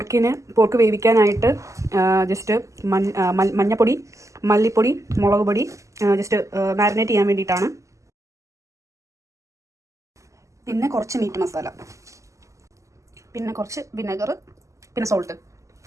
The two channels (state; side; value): late; left; 0.15 ms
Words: വേവിക്കാനായിട്ട് ജസ്റ്റ് മഞ്ഞപ്പൊടി, മല്ലിപ്പൊടി, മുളക് പൊടി ജസ്റ്റ് മാരിനേറ്റ് ചെയ്യാൻ വേണ്ടിയിട്ടാണ്. പിന്നെ കുറച്ച് മീറ്റ് മസാല, പിന്നെ കുറച്ച് വിനെഗർ, പിന്നെ സോൾട്ട്,